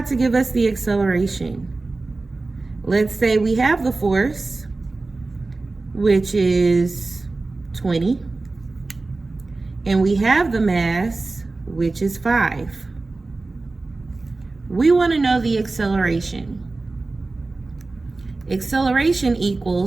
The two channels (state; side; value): quieter; left; 3.4 dB